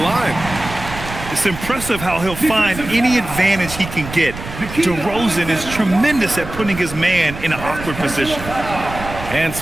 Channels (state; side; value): noise; right; rumble, 11 dB below the sound